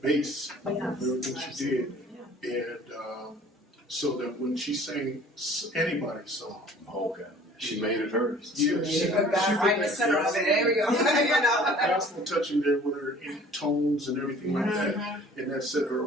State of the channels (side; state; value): both; normal; correlation 0.50